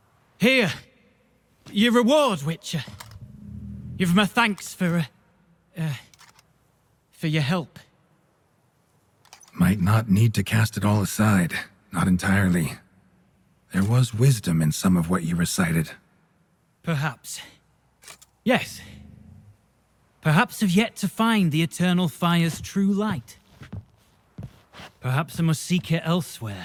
Here. Your reward, Witcher. You've my thanks for your help. Might not need to cast it all aside. Not entirely. There was wisdom in some of what you recited. Perhaps. Yes. Perhaps I've yet to find the eternal fire's true light. Perhaps I must seek it elsewhere.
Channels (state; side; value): identical; both; correlation 1.00